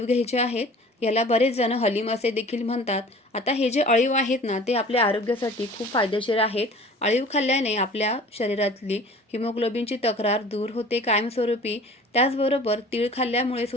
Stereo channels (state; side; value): normal; both; correlation 0.45